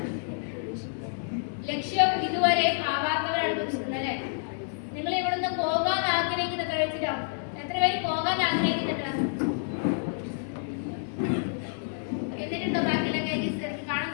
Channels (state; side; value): silent; right; digital silence